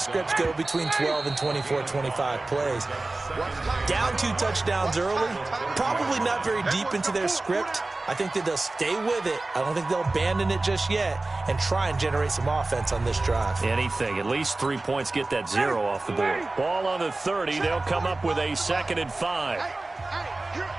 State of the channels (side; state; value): left; quieter; 3.1 dB